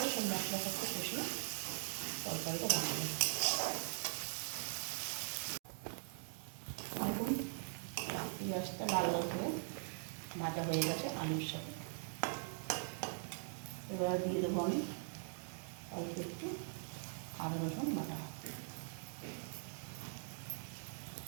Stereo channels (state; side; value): silent; left; digital silence